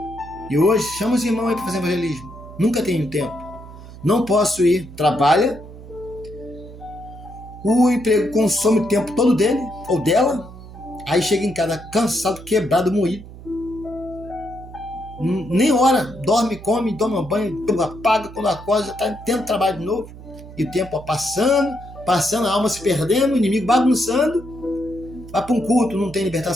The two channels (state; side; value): noise; right; hum, 16 dB below the sound